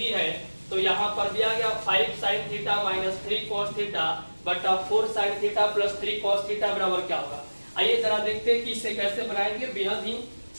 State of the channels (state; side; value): inverted; both; correlation -1.00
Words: है, तो यहाँ पर दिया गया 5 sin theta minus 3 cos theta बटा 4 sin theta plus 3 cos theta बराबर क्या होगा। आइए जरा देखते हैं कि इसे कैसे बनाएंगे। बेहद ही